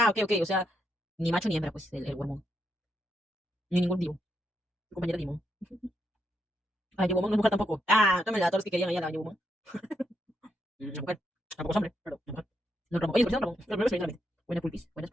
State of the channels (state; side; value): normal; both; correlation 0.80